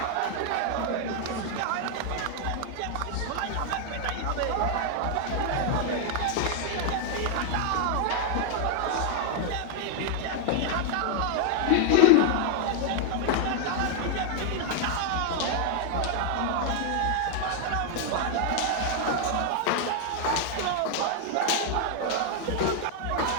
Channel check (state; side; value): different; both; correlation 0.00